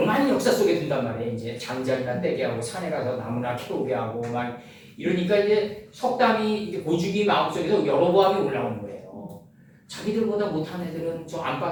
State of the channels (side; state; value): both; identical; correlation 1.00